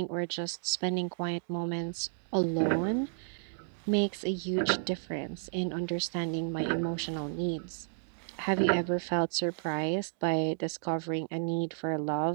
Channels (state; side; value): silent; left; digital silence